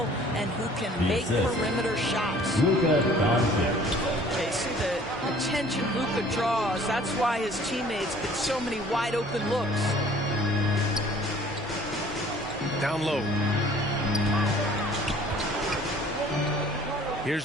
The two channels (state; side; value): normal; both; correlation 0.53